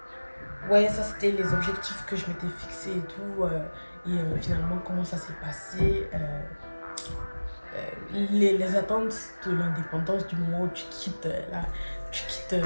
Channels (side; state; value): both; inverted; correlation -1.00